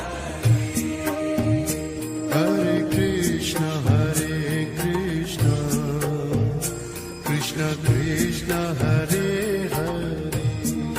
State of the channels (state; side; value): identical; both; correlation 1.00